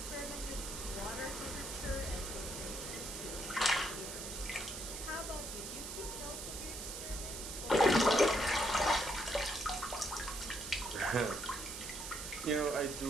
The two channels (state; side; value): noise; right; hiss, 7 dB below the sound